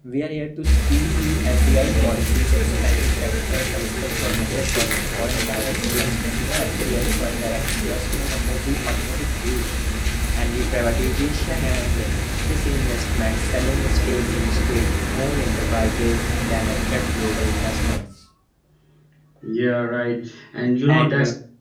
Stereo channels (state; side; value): identical; both; correlation 1.00